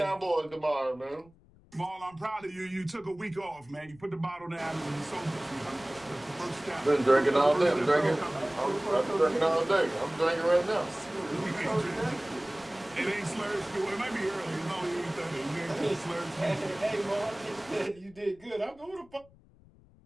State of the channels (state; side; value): noise; left; rumble, 26 dB below the sound